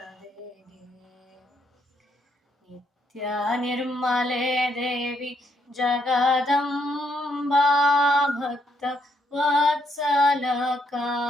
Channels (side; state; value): both; normal; correlation 0.74